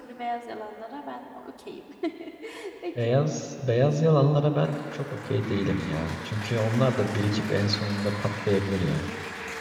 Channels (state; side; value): identical; both; correlation 1.00